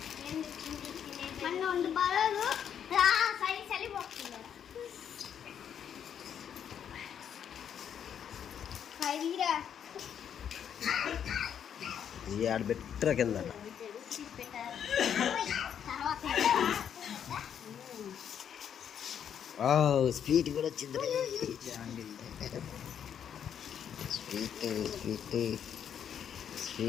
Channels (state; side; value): quieter; right; 8.6 dB